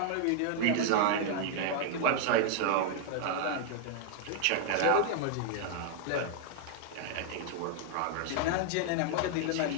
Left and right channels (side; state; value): both; different; correlation 0.00